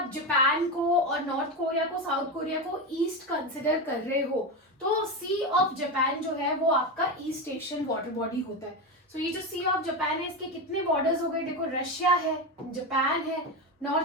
जापान को और नॉर्थ कोरिया को, साउथ कोरिया को ईस्ट कंसिडर कर रहे हो, तो सी ऑफ जापान जो है वो आपका ईस्ट एशियन वाटर बॉडी होता है. सो ये जो सी ऑफ जापान है, इसके कितने बॉर्डर्स हो गए? देखो, रशिया है, जापान है,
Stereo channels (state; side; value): normal; both; correlation 0.16